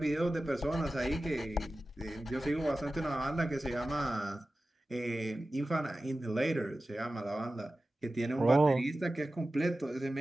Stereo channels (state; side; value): normal; both; correlation 0.95